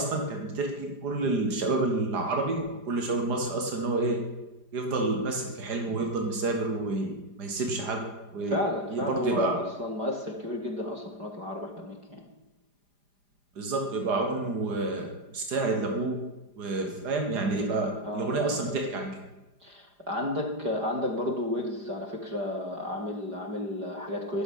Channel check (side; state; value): left; late; 4.9 ms